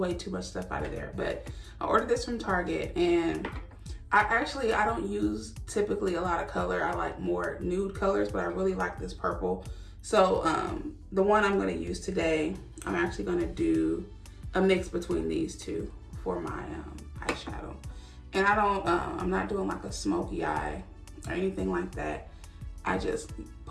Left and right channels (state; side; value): identical; both; correlation 1.00